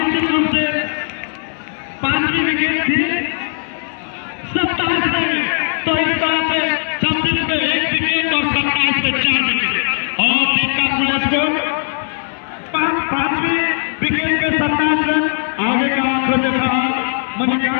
रूप से 5वीं विकेट थी 27 में, तो इस तरह से 26 पे 1 विकेट और 27 पे 4 विकेट और टीम का कुल स्कोर 5वीं विकेट पे 27 रन। आगे का आंकड़े देखा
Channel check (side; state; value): right; silent; digital silence